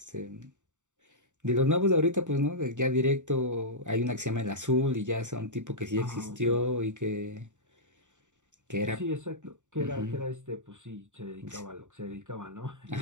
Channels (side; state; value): left; late; 0.85 ms